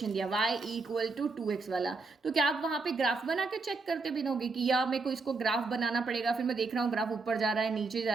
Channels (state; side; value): quieter; left; 4.0 dB